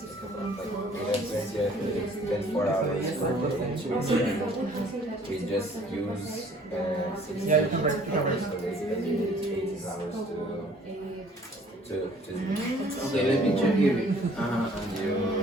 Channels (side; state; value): both; normal; correlation 0.56